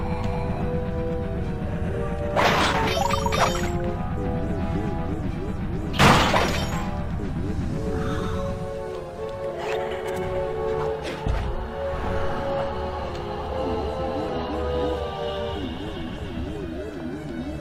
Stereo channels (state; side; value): identical; both; correlation 1.00